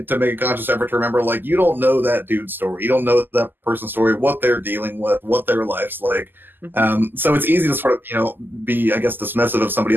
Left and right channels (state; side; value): late; left; 0.092 ms